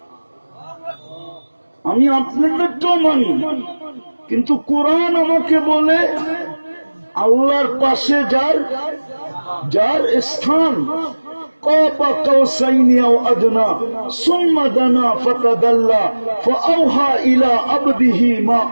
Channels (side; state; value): both; inverted; correlation -1.00